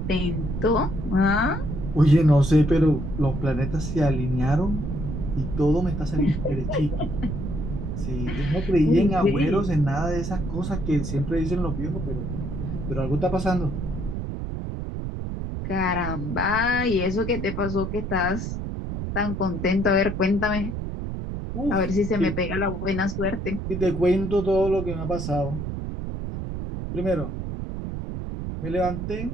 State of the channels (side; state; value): right; noise; rumble, 5 dB below the sound